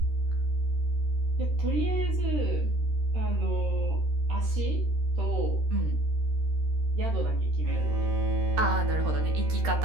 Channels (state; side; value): late; left; 13 ms